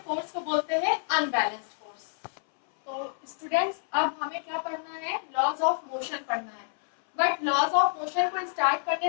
को बोलते हैं अनबैलेंस्ड फोर्स। तो स्टूडेंट्स अब हमें क्या पढ़ना है, लॉज ऑफ मोशन पढ़ना है। बट लॉज ऑफ मोशन को स्टार्ट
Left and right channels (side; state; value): right; silent; 59 dB below the other